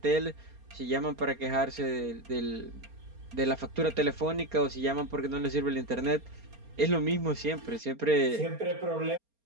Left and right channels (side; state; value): left; late; 4.3 ms